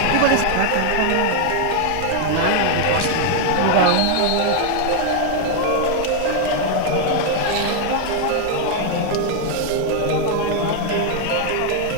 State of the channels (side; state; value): both; different; correlation 0.00